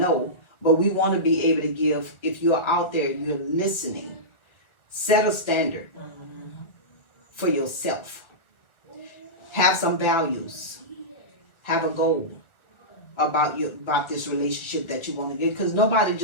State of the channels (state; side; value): late; right; 1.5 ms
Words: but we want to be able to give. If you're out there, you're listening, set a standard for yourself. Have some values. Have a goal about this relationship that you want to get. Because nobody